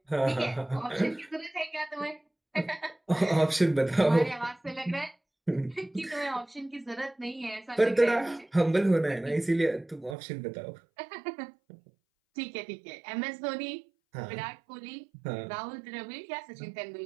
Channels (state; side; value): drops out; left; at 10.2 s